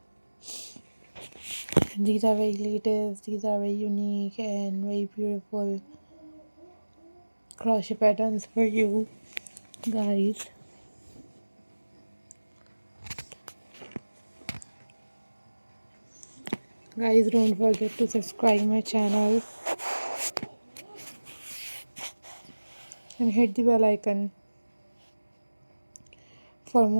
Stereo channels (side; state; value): both; inverted; correlation -1.00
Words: And these are very latest, these are very unique and very beautiful crochet patterns for you guys. Guys, don't forget to subscribe my channel and hit the bell icon for